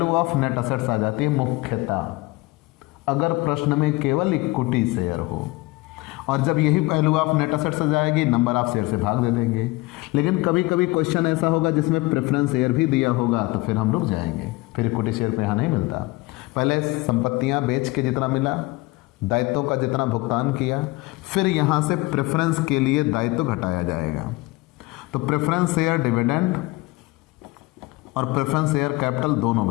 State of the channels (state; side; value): quieter; right; 22.3 dB